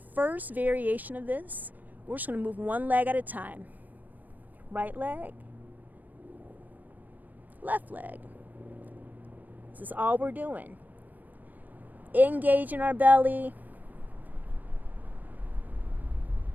variation of this, we're just going to move one leg at a time. Right leg, left leg. This is all we're doing. Engaging our belly.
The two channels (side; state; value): left; late; 0.084 ms